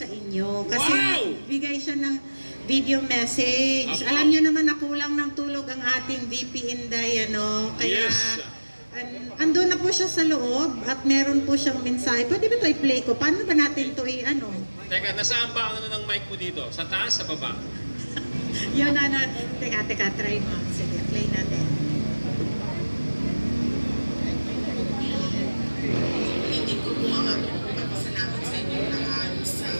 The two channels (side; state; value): both; inverted; correlation -1.00